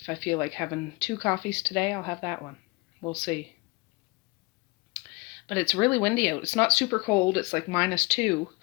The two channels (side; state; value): right; quieter; 26.1 dB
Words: I feel like having 2 coffees today, I'll have that one. We'll see. But it's really windy out. It's not super cold. It's like -2.